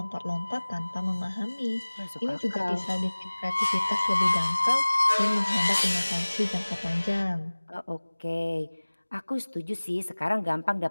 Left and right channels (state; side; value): inverted; both; correlation -1.00